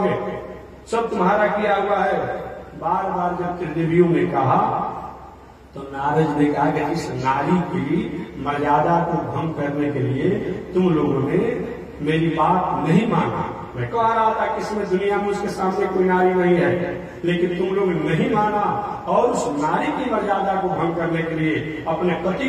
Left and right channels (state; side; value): identical; both; correlation 1.00